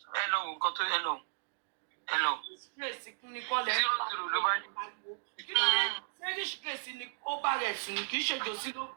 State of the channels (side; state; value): left; silent; digital silence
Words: ẹ lọ wò nǹkan tó ẹ lọ. 0-0 ló bá ní. Fẹ́ríṣ Grace ni ó bá rẹ̀ sùn kì í ṣe jòsí ló